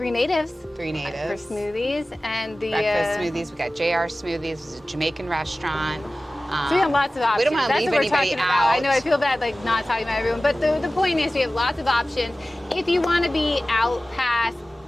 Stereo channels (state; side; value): normal; both; correlation 0.97